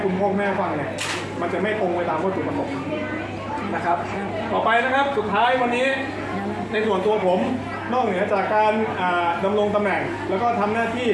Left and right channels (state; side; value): identical; both; correlation 1.00